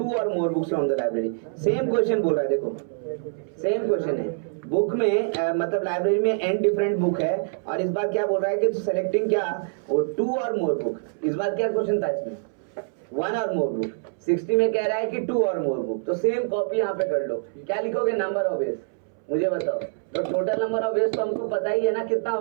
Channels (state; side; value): silent; left; 62 dB below the other